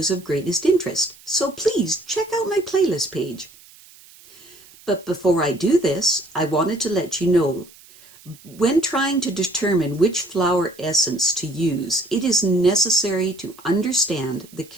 of greatest interest. So please check out my playlist page. But before I do this, I wanted to let you know when trying to determine which flower essence to use, it is necessary to understand the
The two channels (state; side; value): noise; right; hiss, 24 dB below the sound